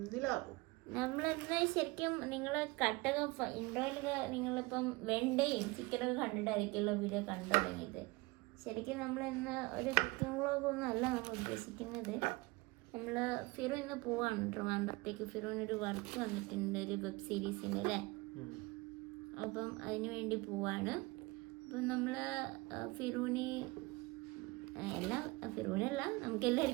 നിലാവും. നമ്മളെന്താ ശരിക്കും നിങ്ങളെ കട്ടൊക്കെ ഇൻട്രോയിലൊക്കെ നിങ്ങളിപ്പം വെണ്ടയും ചിക്കനൊക്കെ കണ്ടിട്ടായിരിക്കുമല്ലോ വീഡിയോ കണ്ടു തുടങ്ങിയത്. ശരിക്കും നമ്മളിന്ന് ഒരു കുക്കിംഗ് വ്ളോഗൊന്നും അല്ല നമ്മൾ ഉദ്ദേശിക്കുന്നത്. നമ്മൾ ഫിറു ഇന്ന് പോവാണ് ട്രിവാൻഡ്രത്തേക്ക്. ഫിറുവിനൊരു വർക്ക് വന്നിട്ടുണ്ട്, ഒരു വെബ് സീരീസിൻ്റെ അല്ലേ. അപ്പം അതിന് വേണ്ടി പോവാണ്. അപ്പം നമ്മൾ ഫിറൂനല്ല നമുക്ക്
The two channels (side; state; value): left; quieter; 23.7 dB